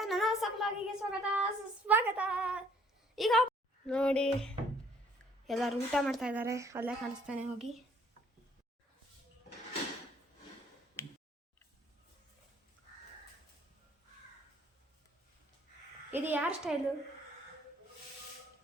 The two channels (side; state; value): both; normal; correlation 0.61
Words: ನನ್ನ ಹೊಸ ಬ್ಲಾಗಿಗೆ ಸ್ವಾಗತ. ಈಗ ನೋಡಿ ಎಲ್ಲರೂ ಊಟ ಮಾಡ್ತಾ ಇದ್ದಾರೆ. ಅಲ್ಲೇ ಕಾಣಿಸ್ತಾನೆ ಹೋಗಿ. ಇದು ಯಾರ ಸ್ಟೈಲು